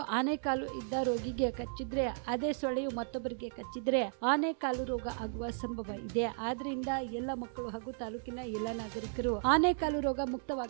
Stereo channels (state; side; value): silent; left; digital silence